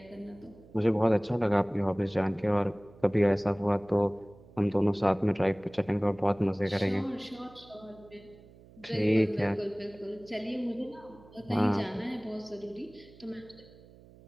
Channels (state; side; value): noise; right; hum, 23 dB below the sound